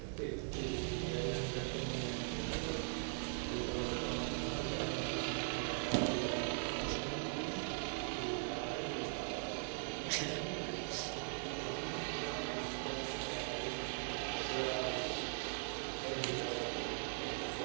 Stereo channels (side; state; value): left; silent; 51 dB below the other